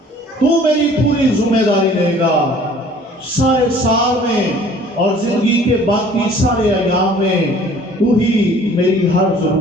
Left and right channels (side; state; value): both; normal; correlation 0.52